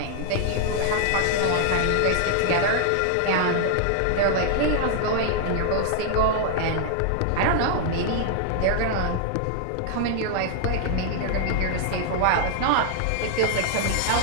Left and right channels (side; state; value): both; different; correlation 0.00